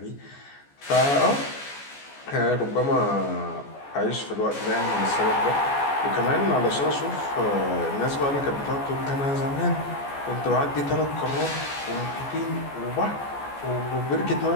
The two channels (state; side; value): late; right; 14 ms